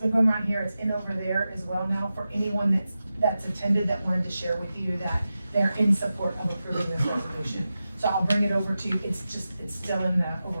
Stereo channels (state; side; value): inverted; both; correlation -0.92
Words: going around here. It's in over there as well now for anyone that's attended that wanted to share with you that they're in support of approving this resolution. So I'll bring it over to you. It's still in the